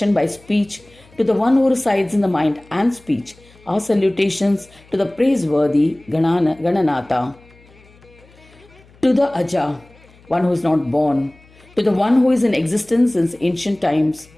by speech, to the one who resides in the mind and speech, our salutations to the praiseworthy Gananatha. To to the Aja, one who is not born, to the one who is in existence since ancient times,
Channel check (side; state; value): left; noise; hum, 27 dB below the sound